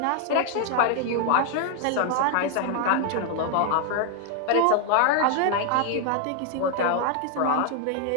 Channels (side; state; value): both; different; correlation 0.00